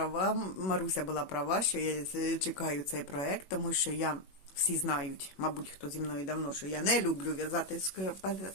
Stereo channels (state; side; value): late; right; 21 ms